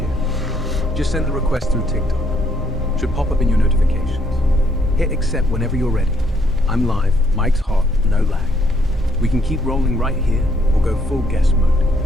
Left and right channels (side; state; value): both; normal; correlation 0.70